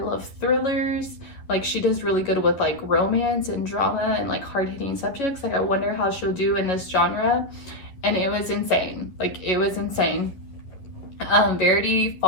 thrillers. Like, she does really good with like romance and drama and like hard-hitting subjects. Like, I wonder how she'll do in this genre. And it was insane. Like, it was insane. Verity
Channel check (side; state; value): right; late; 11 ms